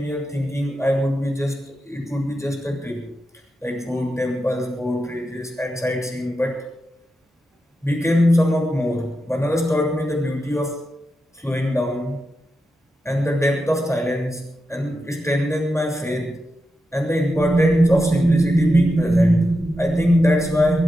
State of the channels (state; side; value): normal; both; correlation 0.88